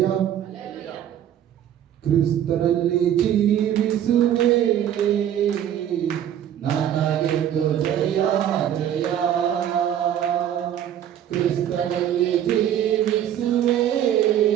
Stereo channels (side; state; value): left; quieter; 10.4 dB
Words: ಕ್ರಿಸ್ತನಲ್ಲಿ ಜೀವಿಸುವೆ ನನಗೆಂದು ಜಯ ಜಯ. ಕ್ರಿಸ್ತನಲ್ಲಿ ಜೀವಿಸುವೆ